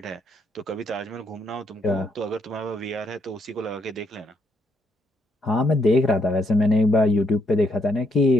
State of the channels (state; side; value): normal; both; correlation 0.75